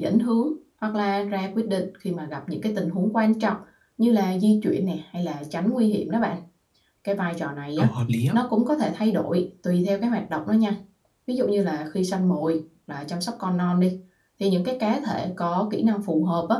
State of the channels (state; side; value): identical; both; correlation 1.00